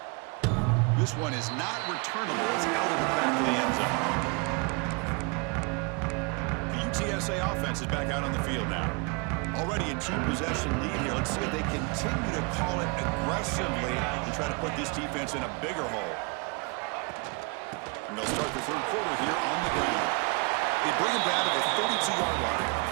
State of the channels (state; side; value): quieter; left; 31.8 dB